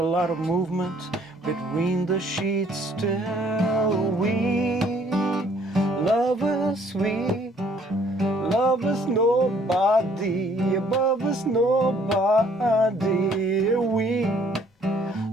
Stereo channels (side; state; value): both; normal; correlation 0.61